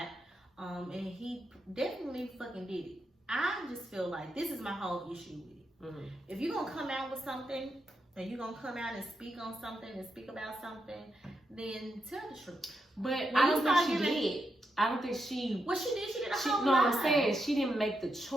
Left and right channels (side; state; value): both; normal; correlation 0.84